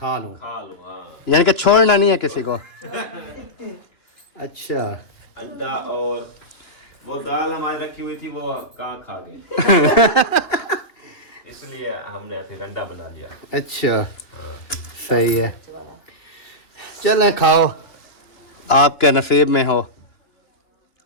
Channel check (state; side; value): late; right; 2.9 ms